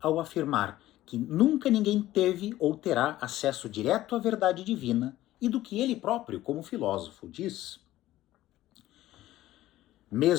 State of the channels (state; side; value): quieter; right; 15.1 dB